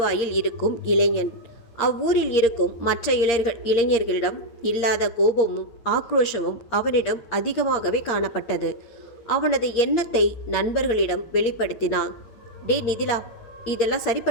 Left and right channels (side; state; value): right; late; 8.6 ms